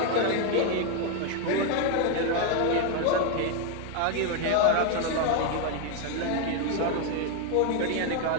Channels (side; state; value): both; different; correlation 0.01